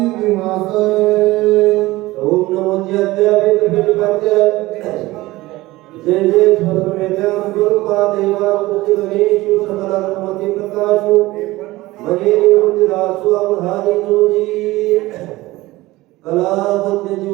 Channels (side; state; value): left; quieter; 18.9 dB